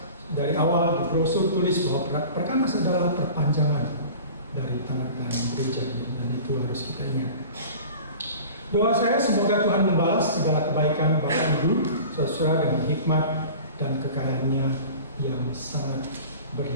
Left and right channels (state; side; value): inverted; both; correlation -0.40